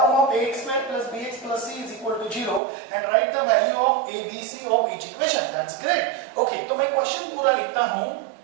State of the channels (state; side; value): drops out; left; at 2.6 s